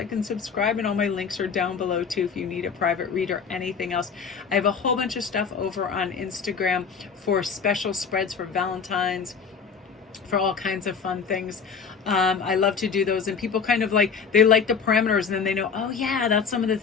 and subscribe, and all my links are down below too if you need a private read or anything else. I have a whole bunch of stuff over on Instagram for special spreads for Valentine's, for all kinds of fun things. I love to do those, and people kind of like, they like the parameters, and then they know, oh yeah, that's some of the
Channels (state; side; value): quieter; right; 6.0 dB